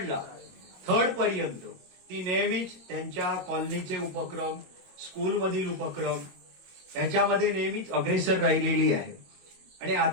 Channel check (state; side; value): late; left; 22 ms